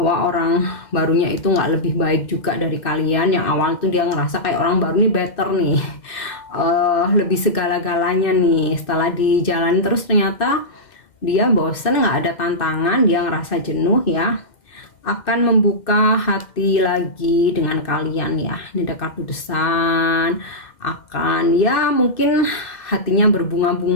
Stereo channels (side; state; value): right; late; 2.1 ms